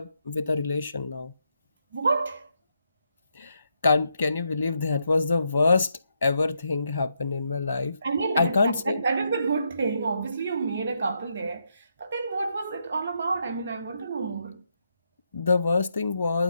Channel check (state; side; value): inverted; both; correlation -0.80